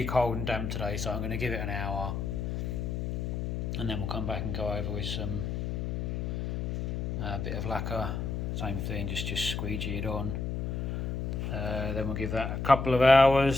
cold and damp today, so I'm going to give it an hour, and then we'll come back and go over with some bit of lacquer. Same thing, just squeegee it on. Then we'll give that a couple of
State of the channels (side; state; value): left; noise; hum, 2 dB below the sound